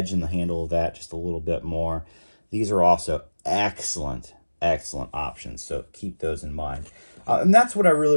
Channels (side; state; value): both; inverted; correlation -1.00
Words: and the handle of that just a little bit more. These are also excellent, excellent options, so keep those in mind. And that's what I